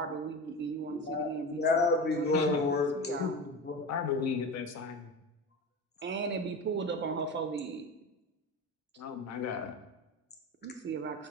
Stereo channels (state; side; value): normal; both; correlation 0.27